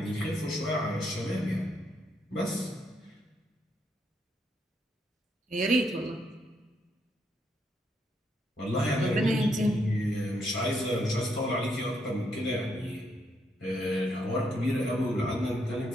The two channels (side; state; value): both; normal; correlation 0.76